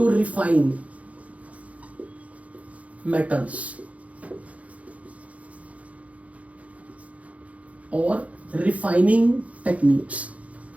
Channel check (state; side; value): late; left; 0.066 ms